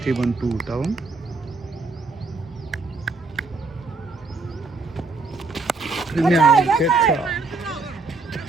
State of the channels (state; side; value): quieter; left; 3.8 dB